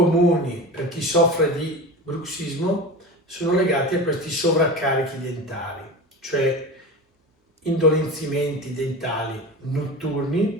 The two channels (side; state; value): both; normal; correlation 0.29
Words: per chi soffre di bruxismo sono legati a questi sovraccarichi dentali, cioè indolenzimenti dentali